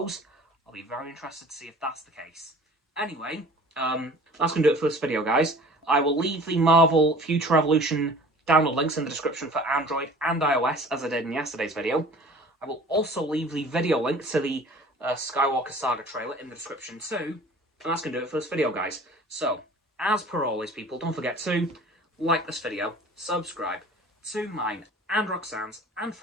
I'll be very interested to see if that's the case. Anyway, that's going to do it for this video, guys. I will leave the Marvel Future Revolution download links in the description for Android and iOS, as I did in yesterday's video. I will also leave the video link to the Skywalker Saga trailer in the description too. And that's going to do it for this video, guys. So, as per always, people, don't forget to like this video, subscribe to mine and Roxanne's and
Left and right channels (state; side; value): normal; both; correlation 0.46